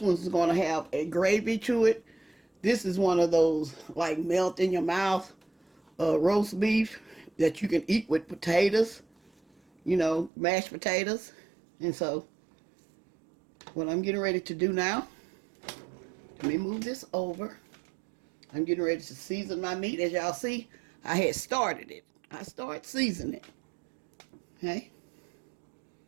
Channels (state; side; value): drops out; left; at 10.3 s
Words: one's going to have a gravy to it. This is one of those like melt in your mouth roast beef that you can eat with potatoes. You know, mashed potatoes. And so, what I'm getting ready to do now, let me move this over. I'm getting ready to season my meat. As y'all see, I had started it. I started seasoning it. Okay?